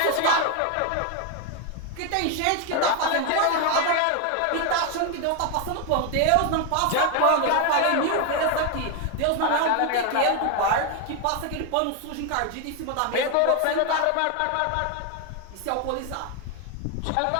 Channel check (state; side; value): different; both; correlation 0.01